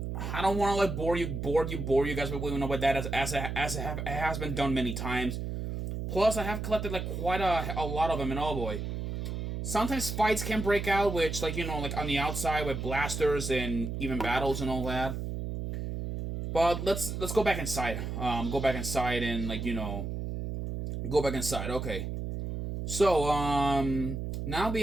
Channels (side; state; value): right; noise; hum, 4 dB below the sound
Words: don't want to bore you guys with that as it has been done many times. Plus, I have collected quite a lot of them, and oh boy, sometimes fights can break out, which on the outside with blasters and even battles and all that. But let's go back inside. Go back inside and go back inside. Okay. So now we